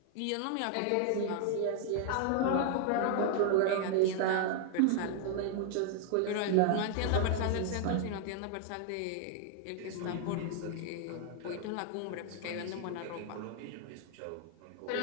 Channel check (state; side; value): different; both; correlation 0.00